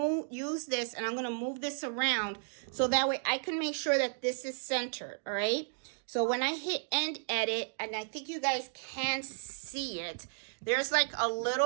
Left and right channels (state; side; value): silent; left; digital silence